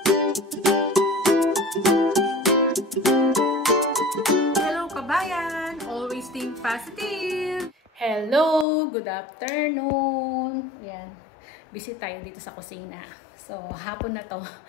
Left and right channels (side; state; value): right; drops out; at 8.7 s